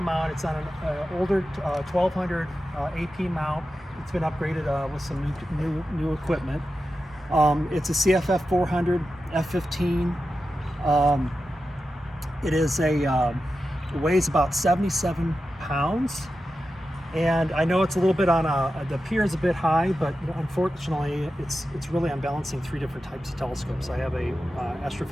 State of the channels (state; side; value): normal; both; correlation 0.91